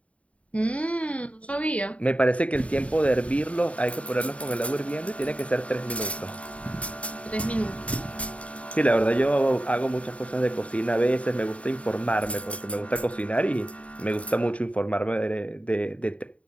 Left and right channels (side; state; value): right; late; 0.065 ms